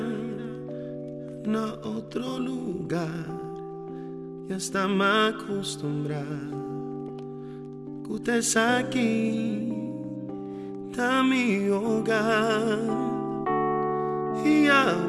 en otro lugar. Ya está me acostumbrado, que usted es aquí, está mi hogar. Y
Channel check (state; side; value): identical; both; correlation 1.00